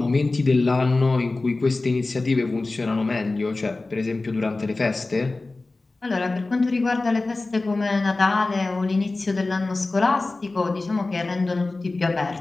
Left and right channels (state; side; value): quieter; right; 3.3 dB